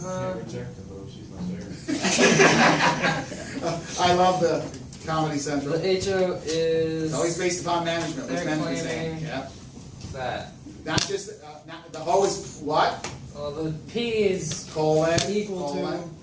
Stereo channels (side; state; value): both; identical; correlation 1.00